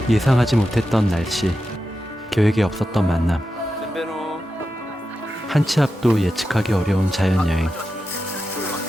예상하지 못했던 날씨, 계획에 없었던 만남, 한 치 앞도 예측하기 어려운 자연여행.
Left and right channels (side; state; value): both; normal; correlation 0.90